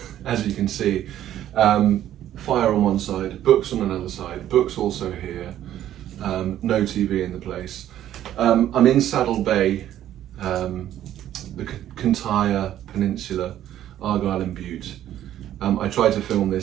as you can see. Fire on one side, books on another side, books also here, no TV in the place. I'm in Saddell Bay, the Kintyre Peninsula, Argyll and Bute. I tried to film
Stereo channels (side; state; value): left; quieter; 11.9 dB